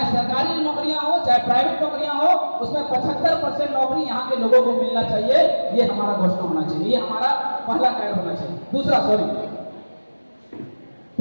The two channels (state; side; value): inverted; both; correlation -1.00